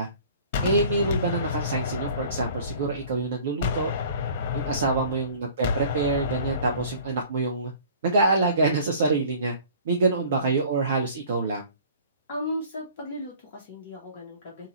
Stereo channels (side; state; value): both; inverted; correlation -0.48